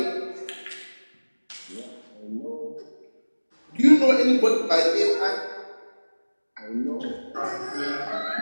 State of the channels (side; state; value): both; inverted; correlation -1.00